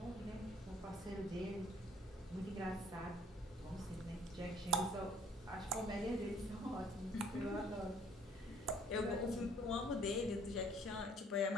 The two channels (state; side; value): normal; both; correlation 0.58